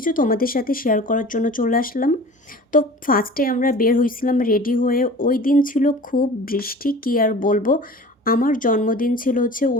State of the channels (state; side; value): normal; both; correlation 0.41